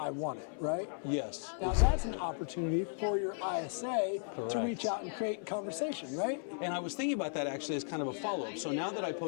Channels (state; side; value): silent; right; 54 dB below the other